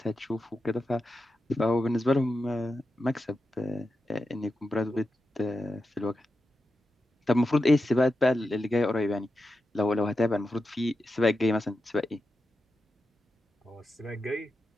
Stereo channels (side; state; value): both; normal; correlation 0.90